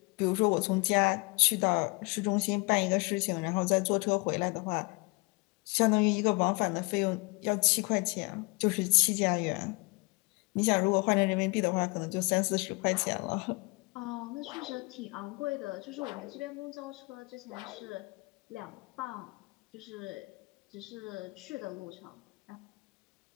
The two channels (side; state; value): right; quieter; 28.2 dB